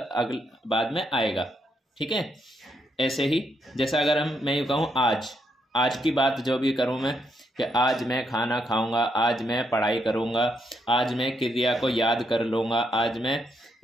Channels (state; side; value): normal; both; correlation 0.77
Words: बाद में आएगा। ठीक है, ऐसे ही जैसे अगर मैं यूँ कहूँ आज की बात जो भी करूँ मैं, कि आज मैं खाना खाऊंगा, आज मैं पढ़ाई करूंगा, आज मैं क्रिया को याद कर लूँगा, आज मैं